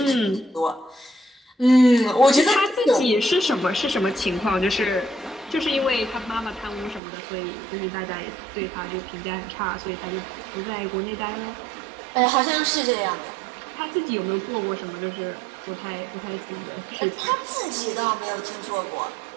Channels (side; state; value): left; drops out; at 7.0 s